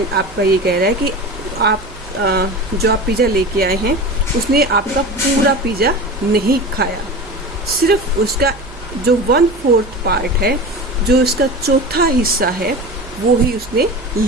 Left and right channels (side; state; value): right; noise; hum, 19 dB below the sound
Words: आपका ये कह रहा है कि आप जो आप पिज़्ज़ा लेके आए हैं उसने आपका पूरा पिज़्ज़ा नहीं खाया, सिर्फ उसका जो 1/4 पार्ट है, जो इसका चौथा हिस्सा है, वो ही उसने